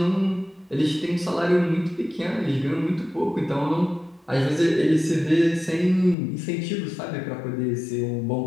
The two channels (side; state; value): right; drops out; at 6.2 s